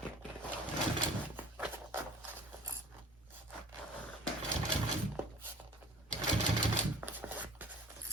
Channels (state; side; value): normal; both; correlation 0.45